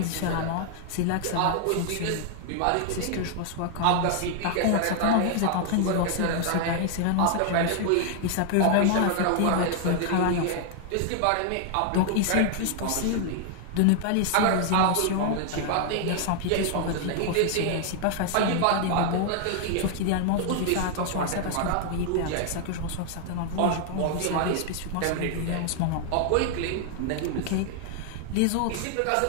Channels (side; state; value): both; different; correlation 0.00